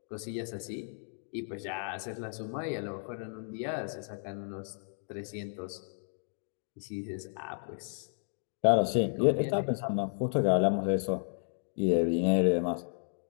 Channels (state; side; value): silent; right; digital silence